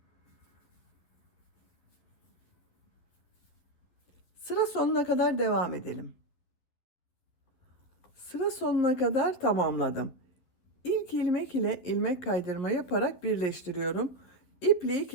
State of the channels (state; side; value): late; right; 12 ms